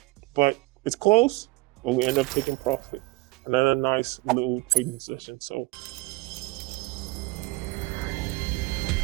But it's close. But we end up taking profit. Another nice little trading session. So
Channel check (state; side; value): quieter; left; 23.2 dB